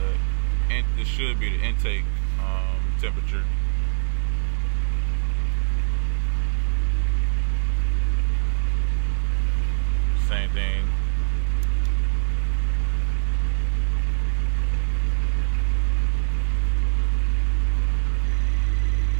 This should be the intake temperature. Same thing.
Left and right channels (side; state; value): left; silent; digital silence